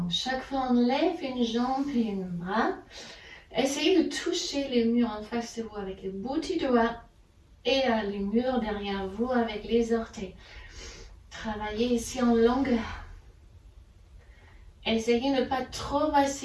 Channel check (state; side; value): identical; both; correlation 1.00